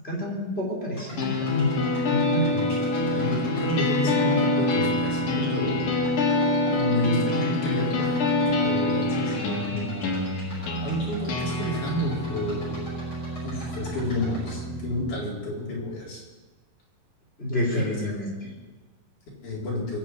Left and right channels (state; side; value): normal; both; correlation -0.05